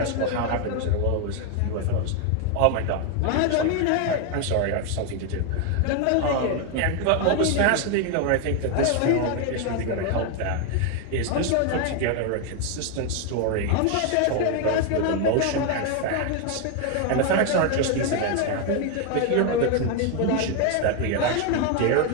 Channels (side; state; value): both; different; correlation 0.01